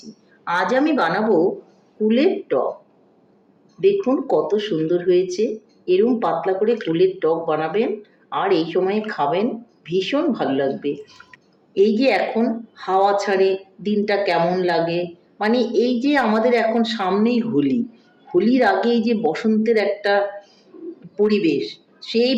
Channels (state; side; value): identical; both; correlation 1.00